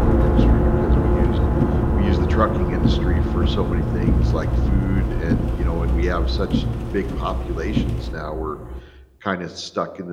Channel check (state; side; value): identical; both; correlation 1.00